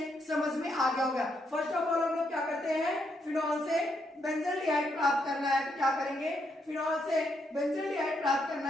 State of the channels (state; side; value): normal; both; correlation 0.77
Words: समझ में आ गया होगा। फर्स्ट ऑफ ऑल हम लोग क्या करते हैं, फिनॉल से बेंजल्डिहाइड प्राप्त करना है तो क्या करेंगे, फिनॉल से बेंजल्डिहाइड प्राप्त करना